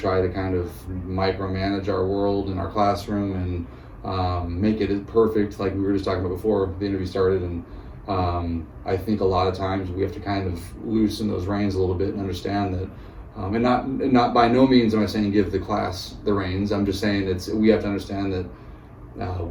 to kind of micromanage our world in our classroom and make it perfect, like we were just talking about before the interview started. And I think a lot of times we have to kind of loosen those reins a little bit and understand that, and not by no means am I saying give the class the reins. I'm just saying we have to understand that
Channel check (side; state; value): both; identical; correlation 1.00